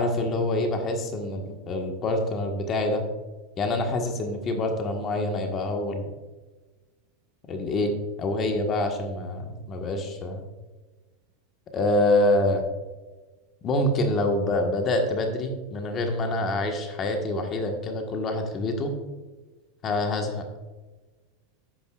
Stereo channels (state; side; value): normal; both; correlation 0.27